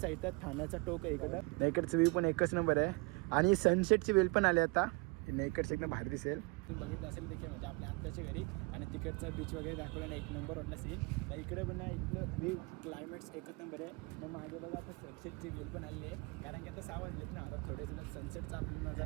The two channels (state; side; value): quieter; left; 28.4 dB